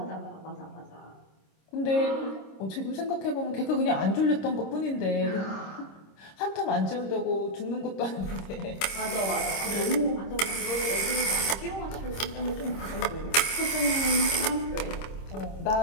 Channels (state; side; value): late; right; 26 ms